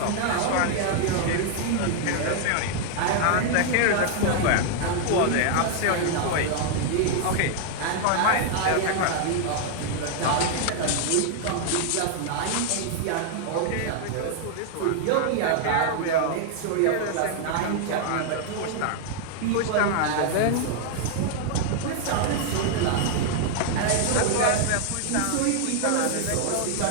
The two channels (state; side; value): different; both; correlation -0.01